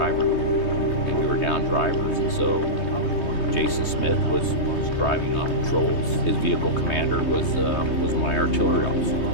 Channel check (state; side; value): late; right; 3.2 ms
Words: and we were down drivers, and so Jason Smith was driving on patrols. His vehicle commander was my artillery officer.